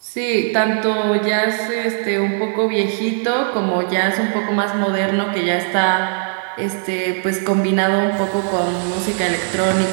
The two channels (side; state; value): left; silent; 67 dB below the other